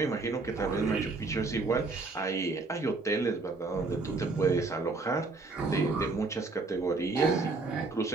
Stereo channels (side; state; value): left; quieter; 3.7 dB